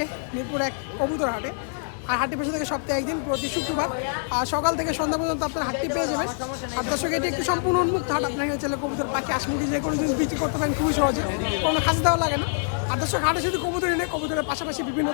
মিরপুর এক কবুতর হাটে। আর হাটটি পেছনে থেকে সপ্তাহে একদিন প্রতি শুক্রবার আর সকাল থেকে সন্ধ্যা পর্যন্ত আপনার হাটটি পেয়ে যাবেন। আর দর্শক এটি একটি সম্পূর্ণ উন্মুক্ত হাট। আপনাকে চাইলে কবুতর, পাখি, আশমুখী যে কোনো জিনিস বিক্রি করতে পারেন খুবই সহজে, কোনো খাঁচা দেওয়া লাগে না। আর দর্শক হাটে শুধু কবুতর এনে, কবুতরের পাশাপাশি বিভিন্ন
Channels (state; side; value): silent; right; digital silence